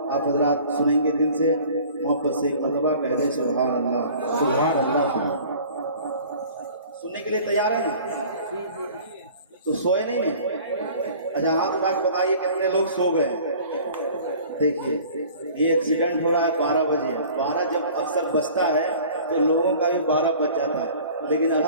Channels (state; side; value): inverted; both; correlation -0.47